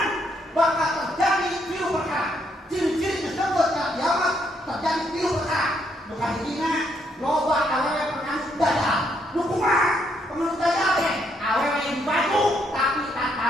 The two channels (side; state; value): both; normal; correlation 0.74